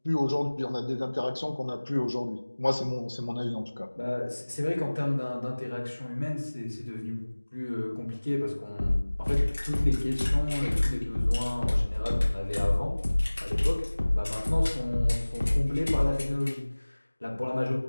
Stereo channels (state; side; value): inverted; both; correlation -1.00